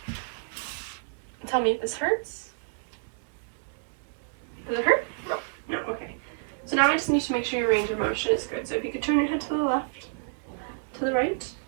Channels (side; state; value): left; silent; digital silence